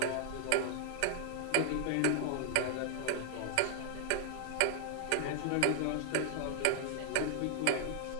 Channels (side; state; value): both; different; correlation -0.01